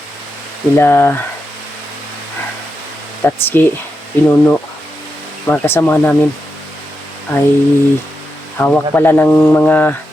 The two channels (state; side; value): normal; both; correlation 0.87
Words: Nila Tatsuki, Pinuno, mga kasama namin ay hawak pala ng mga